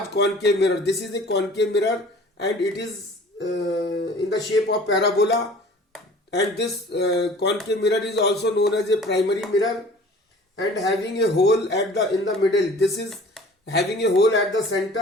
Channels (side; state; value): both; normal; correlation 0.47